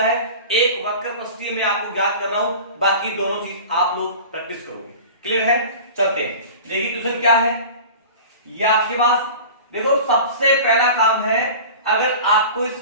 एक वक्र पृष्ठीय में आपको ज्ञात कर रहा हूं, बाकी दोनों चीज आप लोग प्रैक्टिस करोगे। क्लियर है? चलते हैं, देखिए क्वेश्चन क्या है ये आपके पास। देखो सबसे पहला काम है, अगर आपको इस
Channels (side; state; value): both; inverted; correlation -0.37